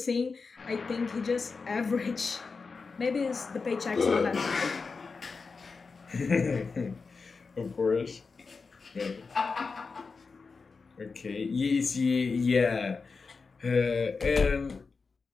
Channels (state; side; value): quieter; right; 4.6 dB